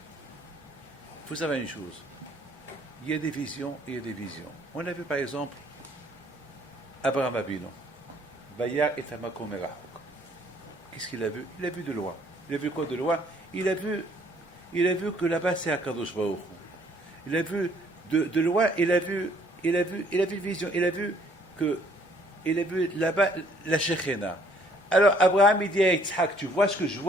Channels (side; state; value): both; normal; correlation 0.61